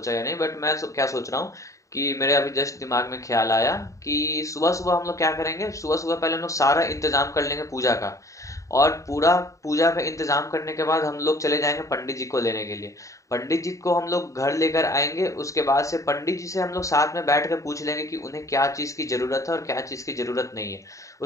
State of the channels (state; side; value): late; right; 0.16 ms